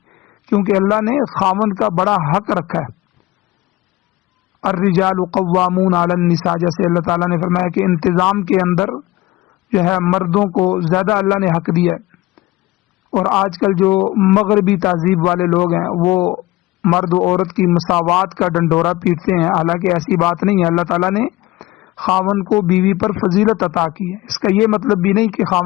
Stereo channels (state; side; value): quieter; right; 18.6 dB